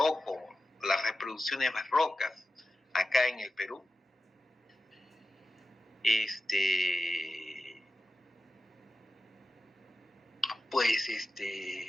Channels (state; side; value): normal; both; correlation 0.93